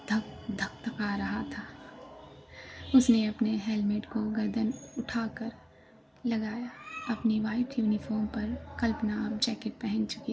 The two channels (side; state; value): both; identical; correlation 1.00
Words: धक धक धका रहा था। उसने अपने हेलमेट को गर्दन उठाकर लगाया। अपनी वाइट यूनिफॉर्म पर कल्पना अब जैकेट पहन